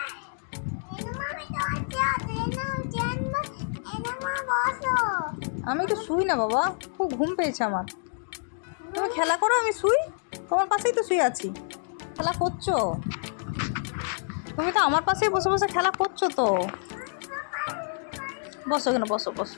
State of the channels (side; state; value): right; silent; digital silence